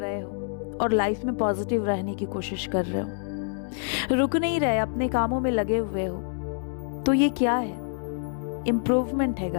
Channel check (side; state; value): right; silent; digital silence